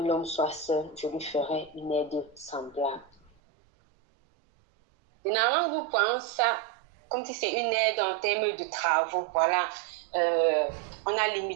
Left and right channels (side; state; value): left; drops out; at 3.3 s